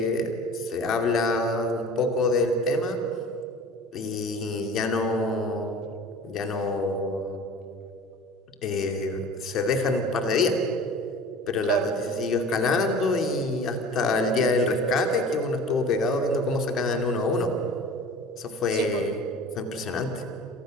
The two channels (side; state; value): both; normal; correlation 0.41